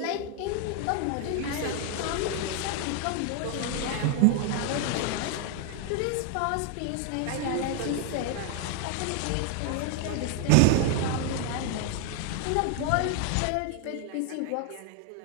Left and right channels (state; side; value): different; both; correlation 0.01